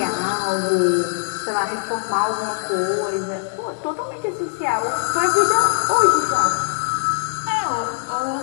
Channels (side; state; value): right; silent; 60 dB below the other